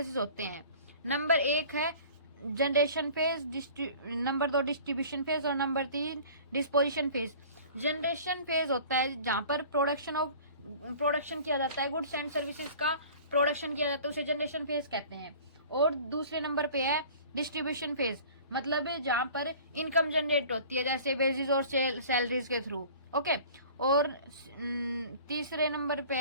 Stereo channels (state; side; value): inverted; both; correlation -0.45